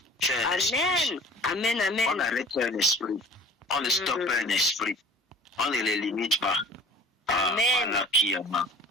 Amen. Amen, amen. On n'arrête pas un esprit. On ne stoppe pas un esprit. On ne les limite pas. Amen. Voilà qui est mort.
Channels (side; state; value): both; normal; correlation 0.45